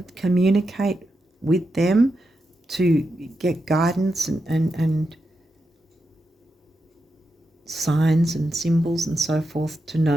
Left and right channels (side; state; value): both; normal; correlation 0.87